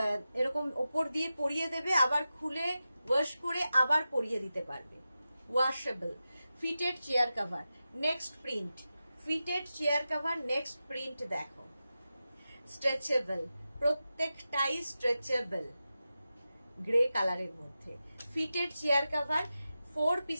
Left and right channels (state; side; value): inverted; both; correlation -0.92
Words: এরকম ওপর দিয়ে পরিয়ে দেবে, আবার খুলে ওয়াশ করে আবার পরিয়ে দিতে পারবে। Washable fitted chair cover. Next print fitted chair cover, next print দেখো, স্ট্রেচেবল, প্রত্যেকটাই স্ট্রেচেবল, গ্রে কালারের মধ্যে। ফিটেড চেয়ার কভার, 4